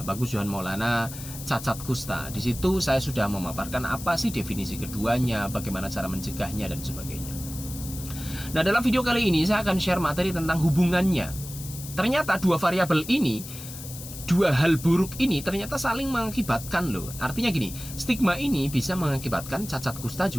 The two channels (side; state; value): left; noise; hiss, 12 dB below the sound